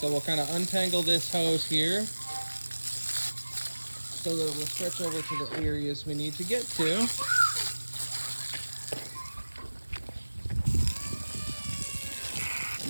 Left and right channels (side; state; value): both; inverted; correlation -1.00